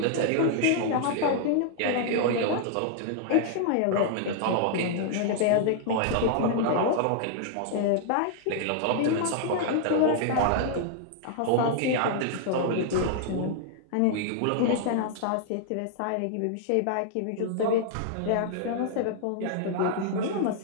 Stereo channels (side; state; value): both; different; correlation -0.01